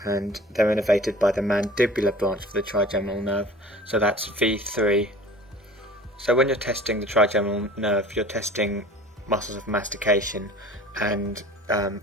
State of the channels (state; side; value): normal; both; correlation 0.44